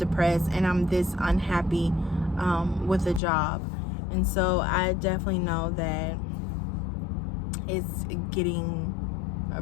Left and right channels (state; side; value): drops out; right; at 3.2 s